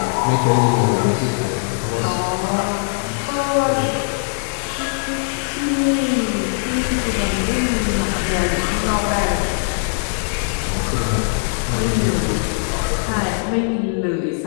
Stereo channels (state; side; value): silent; right; digital silence